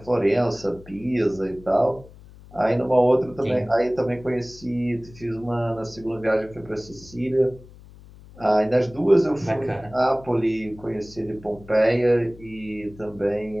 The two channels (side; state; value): left; noise; hum, 21 dB below the sound